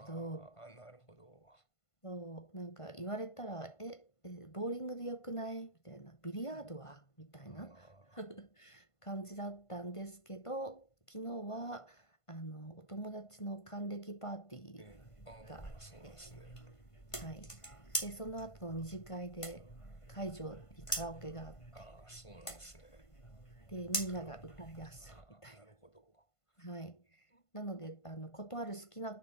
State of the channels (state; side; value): late; right; 1.5 ms